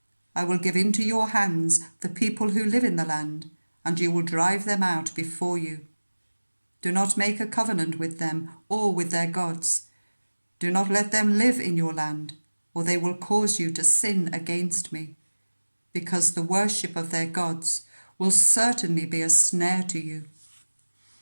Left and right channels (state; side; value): inverted; both; correlation -1.00